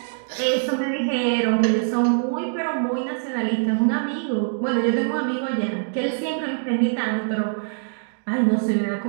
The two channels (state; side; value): silent; left; 63 dB below the other